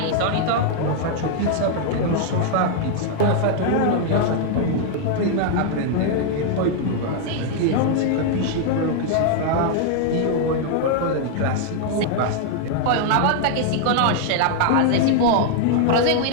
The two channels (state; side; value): different; both; correlation 0.00